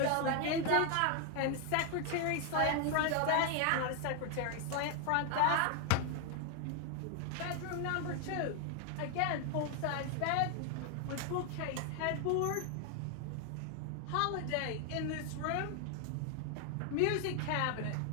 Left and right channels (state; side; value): different; both; correlation 0.00